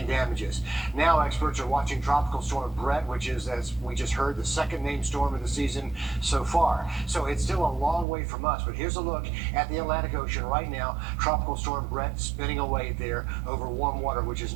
damages. Now experts are watching Tropical Storm Brett, which is, as we just heard, the second named storm of the season so far. So it's still a long way from us, but here's a look at the Atlantic Ocean right now. Tropical Storm Brett spinning away there over warm water, which is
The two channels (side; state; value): left; drops out; at 8.1 s